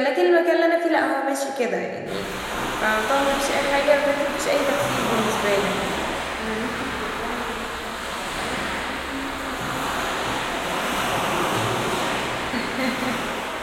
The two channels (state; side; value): identical; both; correlation 1.00